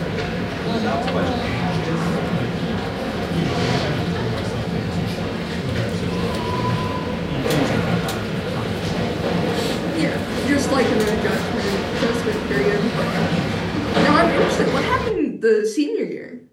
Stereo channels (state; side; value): identical; both; correlation 1.00